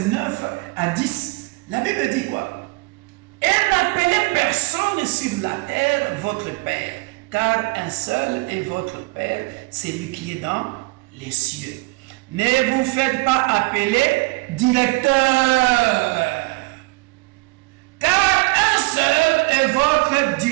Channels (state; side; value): quieter; left; 25.4 dB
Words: 9 à 10. La Bible dit quoi? Et n'appelez personne sur la terre votre Père, car un seul est votre Père, c'est lui qui est dans les cieux. Ne vous faites pas appeler directeur, car un seul est votre